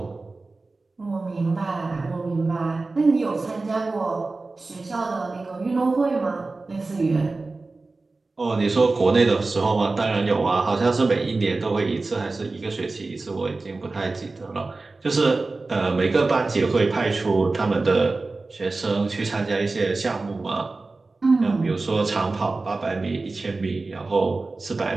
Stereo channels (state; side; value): quieter; left; 3.5 dB